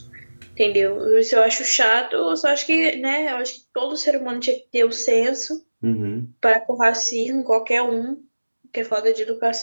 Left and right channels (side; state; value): both; inverted; correlation -1.00